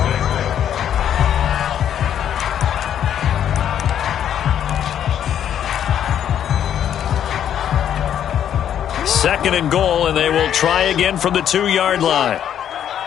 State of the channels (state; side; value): quieter; right; 9.8 dB